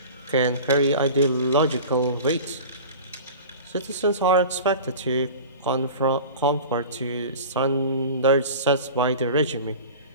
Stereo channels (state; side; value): inverted; both; correlation -0.36